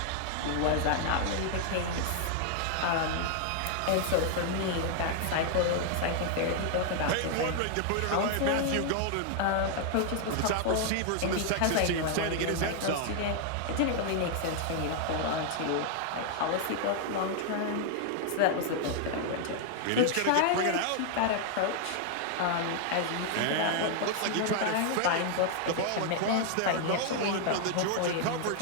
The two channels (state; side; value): different; both; correlation 0.00